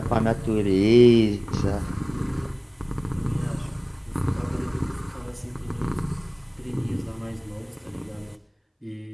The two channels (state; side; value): identical; both; correlation 1.00